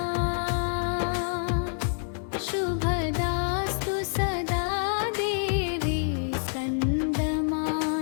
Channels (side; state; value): right; silent; digital silence